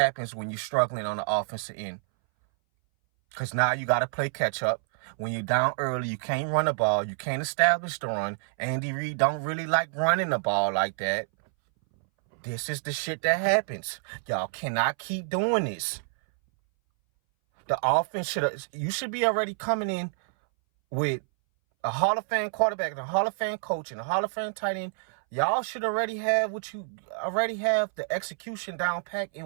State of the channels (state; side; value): silent; left; 59 dB below the other